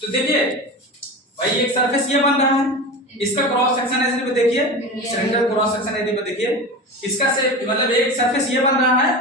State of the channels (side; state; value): both; normal; correlation 0.28